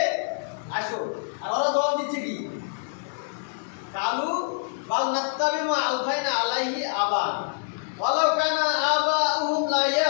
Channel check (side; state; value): right; silent; digital silence